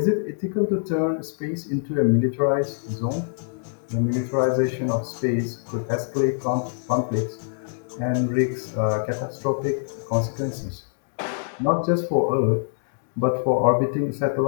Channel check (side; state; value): right; silent; digital silence